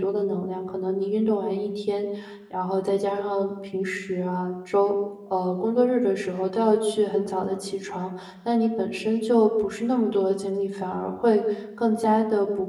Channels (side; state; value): both; identical; correlation 1.00